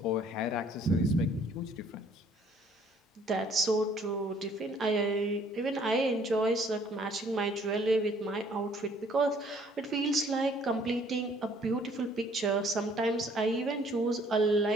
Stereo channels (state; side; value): normal; both; correlation 0.60